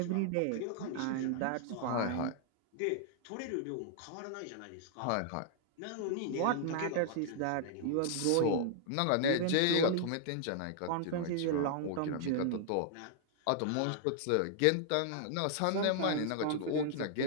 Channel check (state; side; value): different; both; correlation -0.01